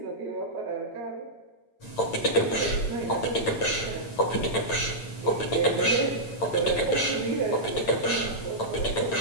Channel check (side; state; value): right; late; 8.9 ms